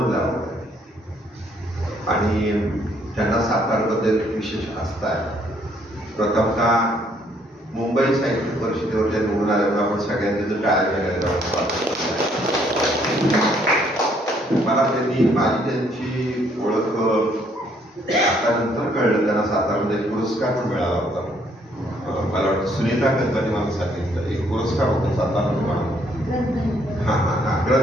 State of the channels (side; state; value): both; normal; correlation 0.67